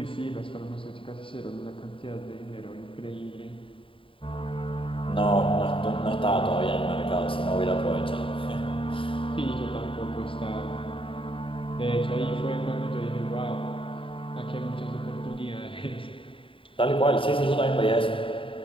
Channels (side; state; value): right; late; 0.25 ms